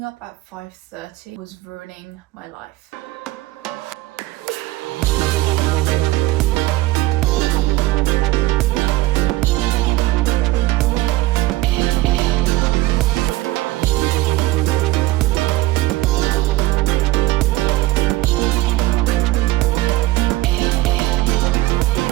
up at 5:30 was ruining my life.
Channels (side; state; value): left; quieter; 18.0 dB